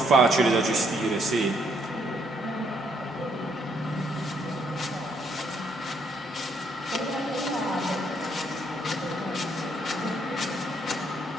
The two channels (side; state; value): both; normal; correlation 0.71